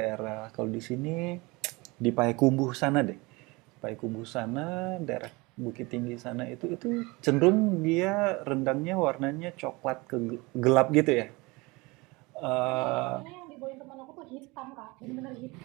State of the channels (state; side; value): quieter; left; 24.5 dB